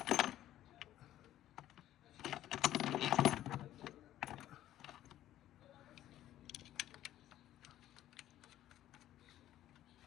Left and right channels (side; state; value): right; quieter; 13.1 dB